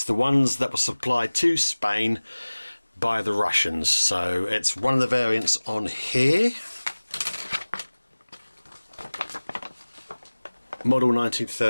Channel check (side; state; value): both; inverted; correlation -1.00